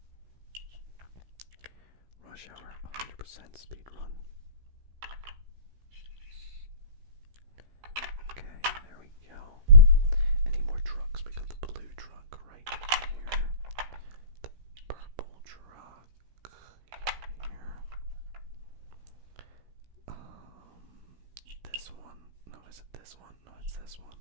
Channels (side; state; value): left; late; 16 ms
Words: Rush Hour 100% speed run. Okay, there we go. Any more trucks? We got the blue truck right here. The purple truck here. This one. No, is it this one? No, it's this one.